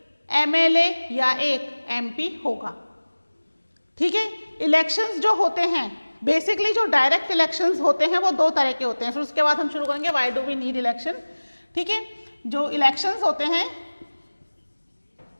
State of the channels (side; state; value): both; inverted; correlation -1.00